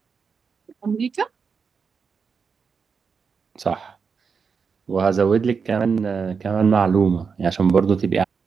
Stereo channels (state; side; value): quieter; left; 5.7 dB